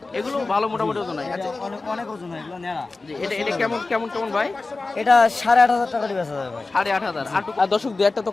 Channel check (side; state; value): right; quieter; 3.6 dB